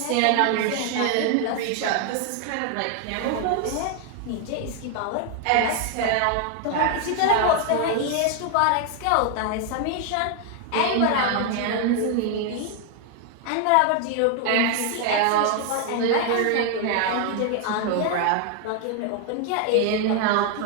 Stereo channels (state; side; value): different; both; correlation 0.00